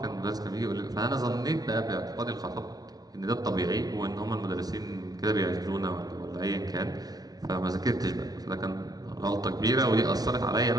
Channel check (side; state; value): left; late; 0.19 ms